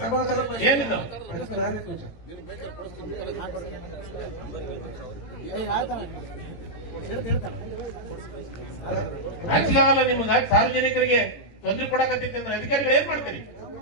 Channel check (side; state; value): right; late; 18 ms